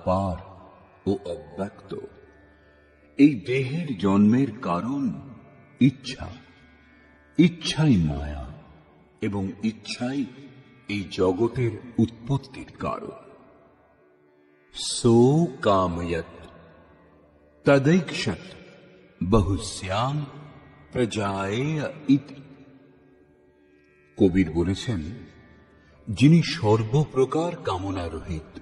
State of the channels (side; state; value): both; identical; correlation 1.00